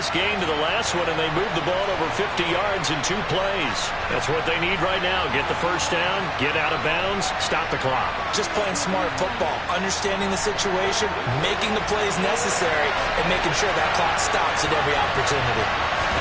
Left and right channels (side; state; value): both; identical; correlation 1.00